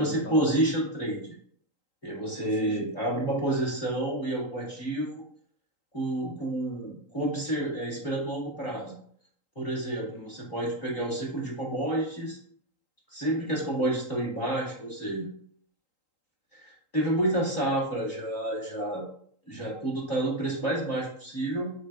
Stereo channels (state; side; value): late; right; 3.8 ms